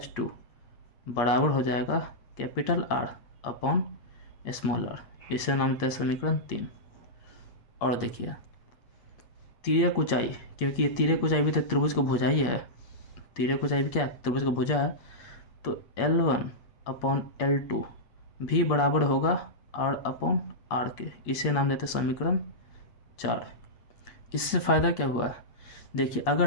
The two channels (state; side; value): late; right; 8.4 ms